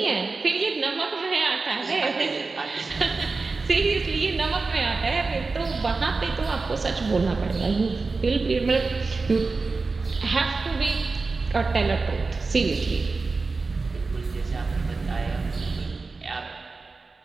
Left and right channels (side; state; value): left; quieter; 4.0 dB